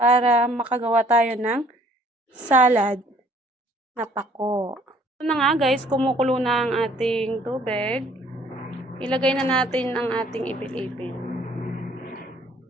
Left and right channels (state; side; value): normal; both; correlation 0.58